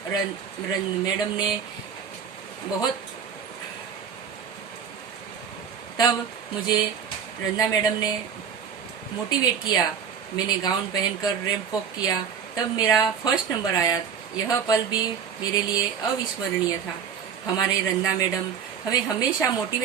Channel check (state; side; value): quieter; left; 7.4 dB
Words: मैडम ने तब मुझे रंजना मैडम ने मोटिवेट किया। मैंने गाउन पहनकर रैंप वॉक किया। तब मेरा फर्स्ट नंबर आया। यह पल भी मेरे लिए अविस्मरणीय था। हमारे रंजना मैडम हमें हमेशा